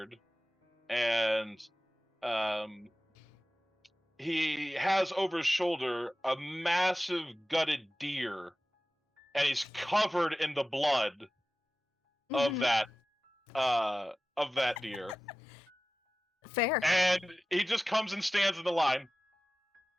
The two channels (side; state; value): both; normal; correlation 0.95